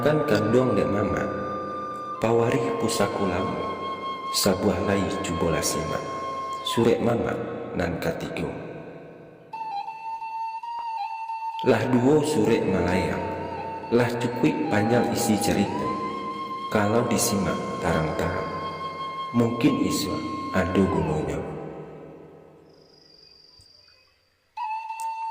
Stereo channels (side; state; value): both; identical; correlation 1.00